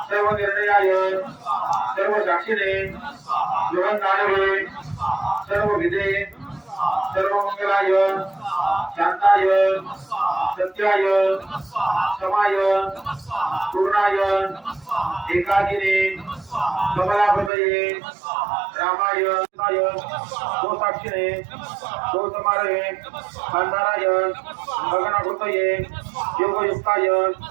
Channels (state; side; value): drops out; left; at 17.5 s